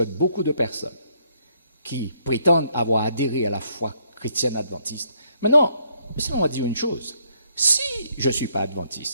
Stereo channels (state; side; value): inverted; both; correlation -0.70